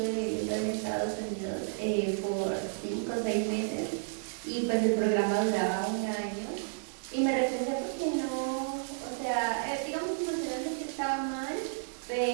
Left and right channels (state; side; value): silent; left; digital silence